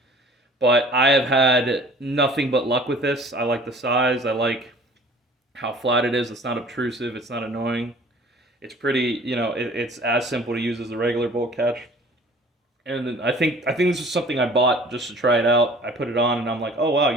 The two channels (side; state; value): both; normal; correlation 0.49